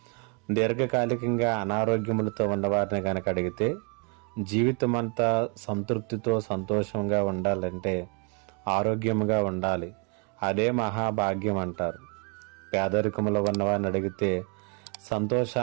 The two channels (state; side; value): quieter; left; 35.6 dB